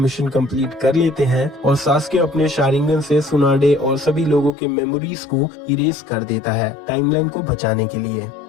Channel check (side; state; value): right; drops out; at 4.5 s